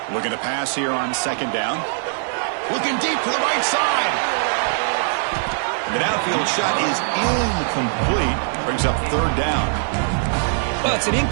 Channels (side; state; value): left; silent; 65 dB below the other